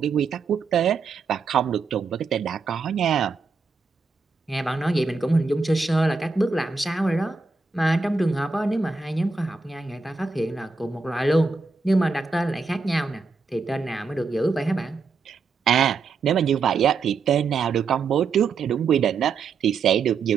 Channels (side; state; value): left; quieter; 4.6 dB